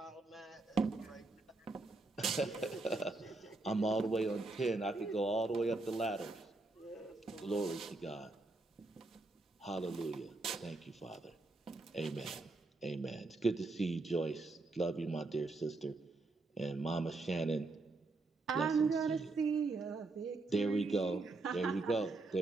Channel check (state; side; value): quieter; left; 3.3 dB